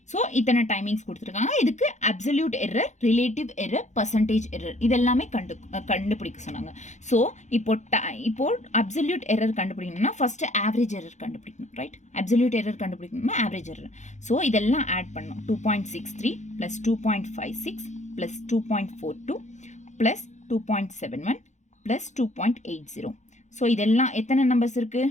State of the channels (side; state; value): right; late; 0.34 ms